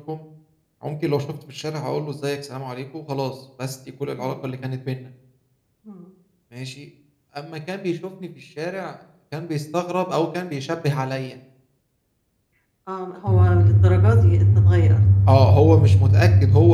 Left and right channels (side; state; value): both; identical; correlation 1.00